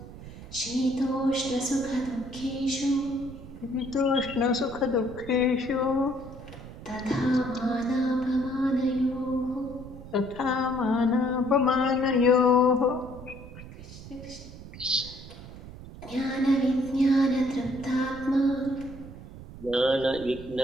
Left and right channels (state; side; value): noise; right; rumble, 15 dB below the sound